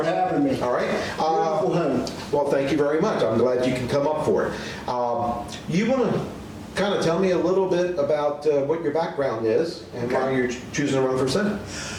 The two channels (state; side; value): identical; both; correlation 1.00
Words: having me. All right. Beautiful home. Well, thank you very much. I'm glad you can come up for it. You want to kind of tell me a little bit about what your background is and why you're choosing to run for Senate?